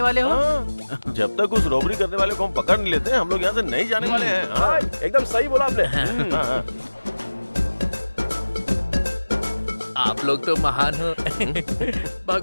वाले हो? जब तक उस रॉबरी करने वाले को हम पकड़ नहीं लेते, हम लोग यहाँ से नहीं जाने वाले हैं। एकदम सही बोला आपने। आप लोग तो महान हो।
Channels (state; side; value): inverted; both; correlation -1.00